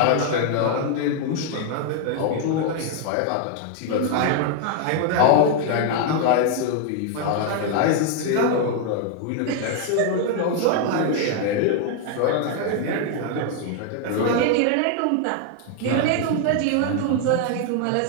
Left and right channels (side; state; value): both; different; correlation 0.00